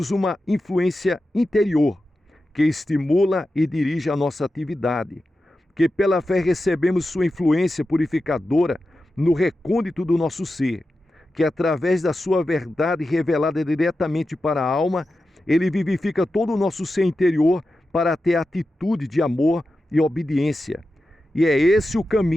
uma influência interior que estimula e dirige a nossa atividade. Que pela fé recebemos sua influência purificadora no recôndito do nosso ser. Que através da sua verdade revelada diretamente para a alma, Ele vivifica todo o nosso ser interior para ter atitude de amor e obediência. E é esse o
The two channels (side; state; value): both; normal; correlation 0.91